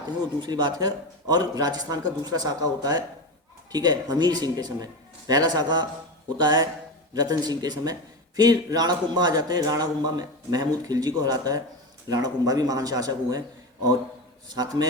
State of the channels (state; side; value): normal; both; correlation 0.20